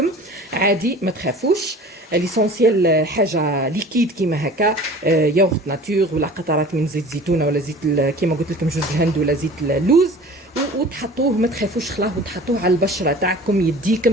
عادي، ما تخافوش. ليسونسيال حاجه ليكيد كيما هكا، ياغورت ناتور ولا قطرات من زيت زيتونه ولا زيت كيما قلت لكم جوز الهند ولا زيت اللوز، وتحطوه ما تخافوش خلاه، وتحطوه على البشره تاعكم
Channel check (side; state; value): both; normal; correlation 0.43